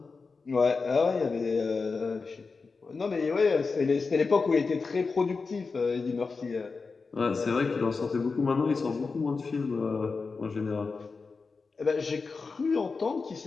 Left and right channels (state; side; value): quieter; right; 4.5 dB